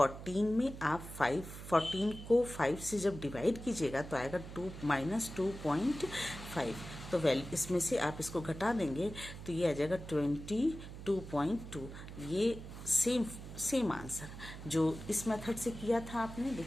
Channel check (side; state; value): right; noise; hum, 11 dB below the sound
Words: में आप 14 को 5 से जब डिवाइड कीजिएगा तो आएगा 2 -2.5। तो वैल्यू इसमें से आप इसको घटा देंगे तो ये आ जाएगा 22.2। ये सेम आंसर जो इस मेथड से किया था आपने।